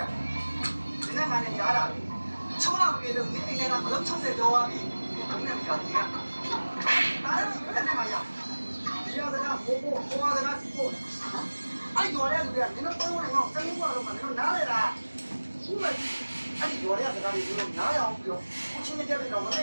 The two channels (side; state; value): both; inverted; correlation -1.00